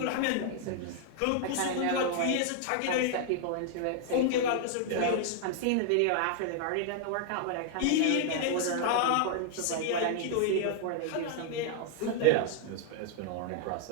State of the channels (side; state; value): both; different; correlation -0.01